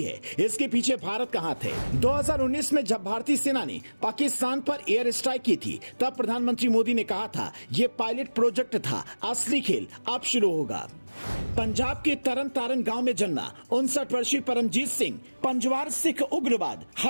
है, इसके पीछे भारत का हाथ है। 2019 में जब भारतीय सेना ने पाकिस्तान पर एयर स्ट्राइक की थी, तब प्रधानमंत्री मोदी ने कहा था यह पायलट प्रोजेक्ट था, असली खेल अब शुरू होगा। पंजाब के तरन तारण गांव में जन्मा 59 वर्षीय परमजीत सिंह पंजवार सिख उग्रवाद,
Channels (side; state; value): both; inverted; correlation -1.00